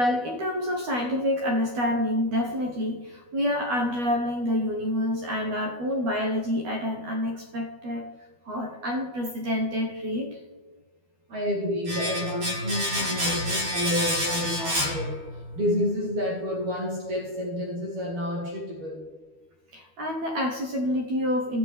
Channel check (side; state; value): left; late; 12 ms